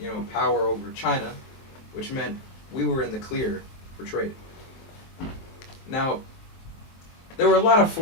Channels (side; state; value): right; late; 23 ms